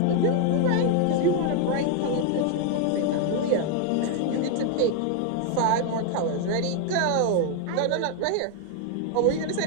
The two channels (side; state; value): both; different; correlation 0.00